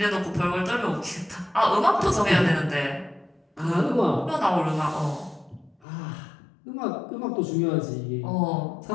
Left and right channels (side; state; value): right; drops out; at 5.8 s